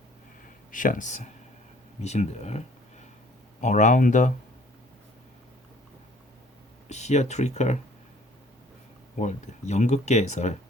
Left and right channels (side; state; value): both; normal; correlation 0.56